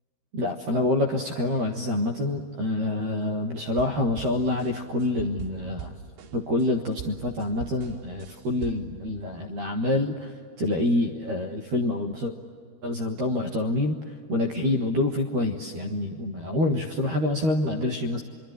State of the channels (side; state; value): left; late; 13 ms